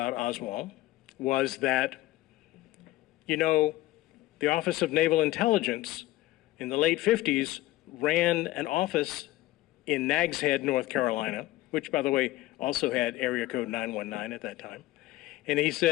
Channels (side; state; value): right; quieter; 17.1 dB